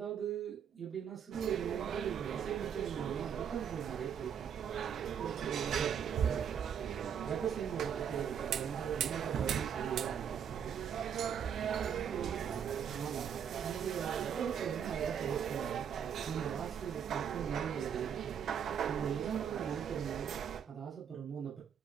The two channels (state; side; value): quieter; left; 8.1 dB